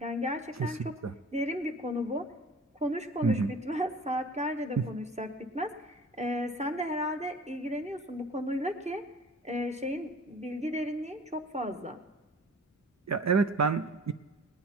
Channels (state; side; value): normal; both; correlation 0.46